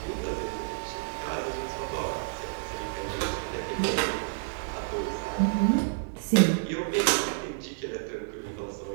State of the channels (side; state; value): left; silent; digital silence